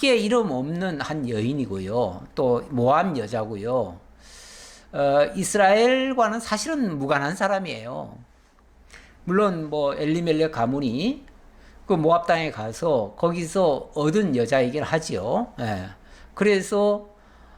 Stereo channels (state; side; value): identical; both; correlation 1.00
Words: 이름 없는 한 여인이고요. 또 모압 여자고요. 이스라엘과는 사실은 무관한 사람이에요. 물론 뭐 엘리멜렉 가문이 그 모압 땅에 가서 거기서 얻은 여자이긴 하지요. 예. 그래서